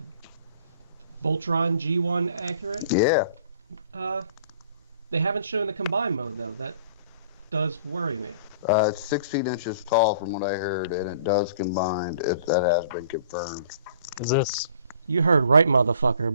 Voltron G1 accurate. Yeah. They haven't shown the combined mode though. That does worry me. It's 16 inches tall from what I heard, and it does combine. That has been confirmed. Is this? You heard right, motherfucker,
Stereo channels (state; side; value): inverted; both; correlation -0.51